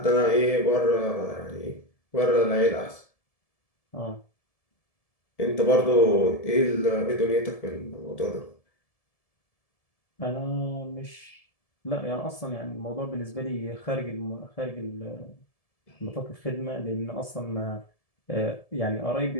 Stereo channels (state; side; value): late; right; 1.7 ms